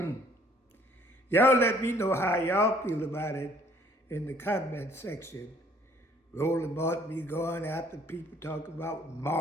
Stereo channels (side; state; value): both; normal; correlation 0.59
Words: Y'all let me know how y'all feel about it in the comment section. Roland Martin be going after people talking about